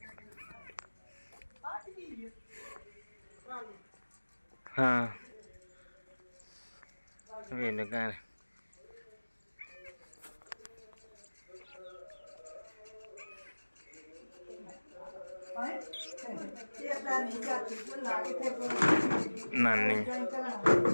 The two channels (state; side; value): inverted; both; correlation -1.00